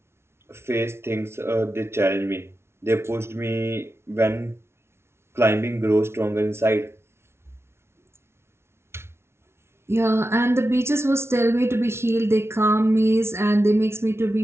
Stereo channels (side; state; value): left; late; 0.12 ms